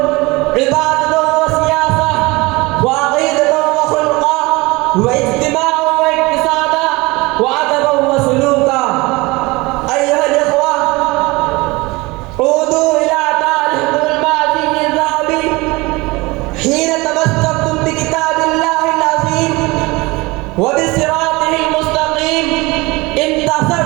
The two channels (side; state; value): left; quieter; 23.1 dB